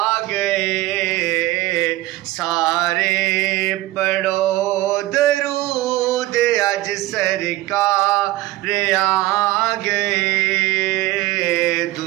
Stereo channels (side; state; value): left; quieter; 17.4 dB